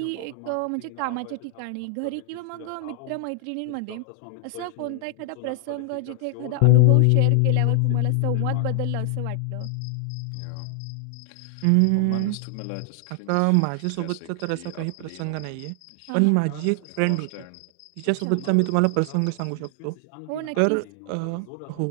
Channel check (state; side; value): different; both; correlation 0.00